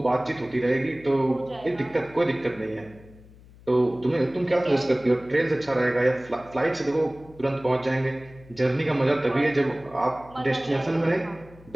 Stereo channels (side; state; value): left; noise; hum, 23 dB below the sound